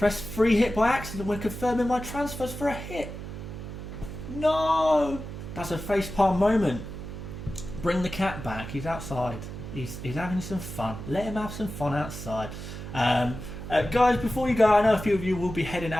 free hit by accident when confirming my transfers for a hit. No! That's a facepalm moment. Bring the cat back. He's outside. He's having some fun. Let him have some fun outside. Guys, before you go, I know a few of you will be heading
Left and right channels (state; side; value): noise; right; hum, 9 dB below the sound